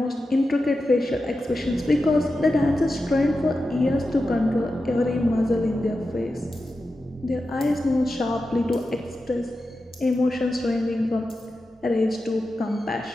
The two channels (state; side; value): normal; both; correlation 0.91